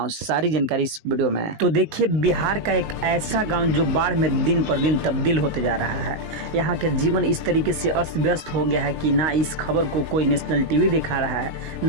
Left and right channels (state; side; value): late; left; 19 ms